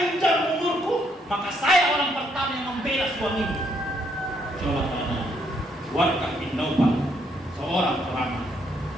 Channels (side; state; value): both; normal; correlation 0.72